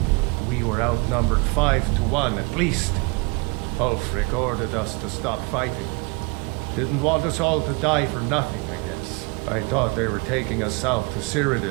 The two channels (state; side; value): quieter; left; 29.8 dB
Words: We were outnumbered 5-1 at least. Ulfric ordered us to stop fighting. Didn't want us all to die for nothing, I guess. I thought they were taking us south to